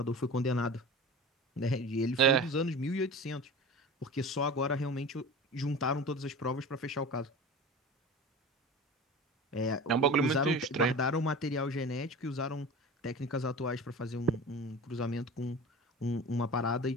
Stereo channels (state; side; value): normal; both; correlation 0.34